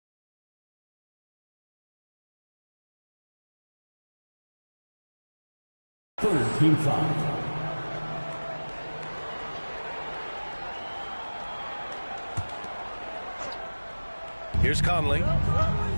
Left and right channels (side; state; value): both; inverted; correlation -1.00